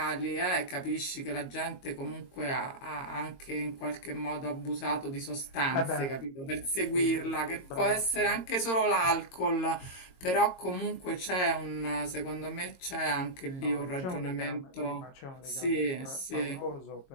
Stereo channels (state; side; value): late; right; 22 ms